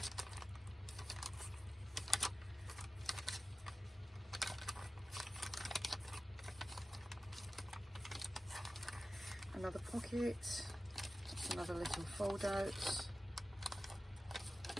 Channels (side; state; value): both; normal; correlation 0.95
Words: Another pocket, another little fold out.